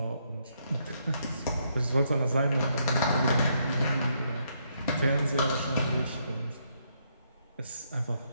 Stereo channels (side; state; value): both; inverted; correlation -0.75